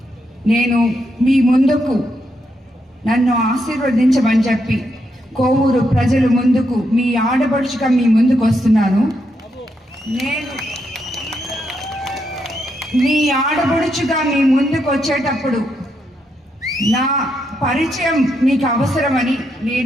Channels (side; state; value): both; normal; correlation 0.80